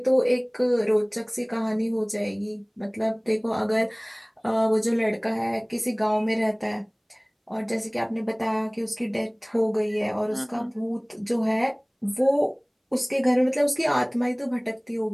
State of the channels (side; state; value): both; identical; correlation 1.00